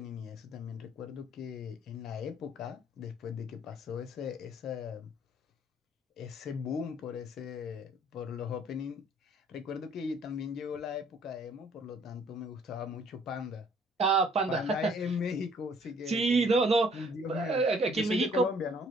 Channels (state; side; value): normal; both; correlation 0.60